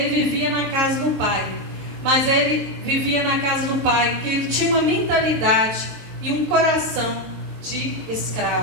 vivia na casa do pai. Mas ele vivia na casa do pai, que ele tinha uma mentalidade e um coração de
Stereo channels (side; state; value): left; late; 22 ms